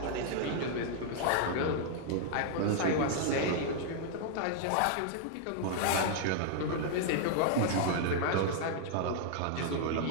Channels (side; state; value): both; different; correlation -0.01